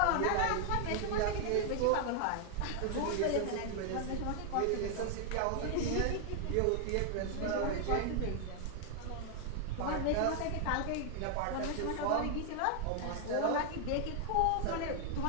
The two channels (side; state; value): both; different; correlation 0.00